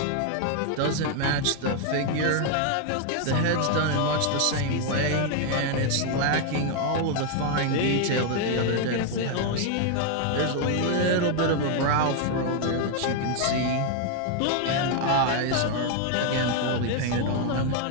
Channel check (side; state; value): both; different; correlation 0.00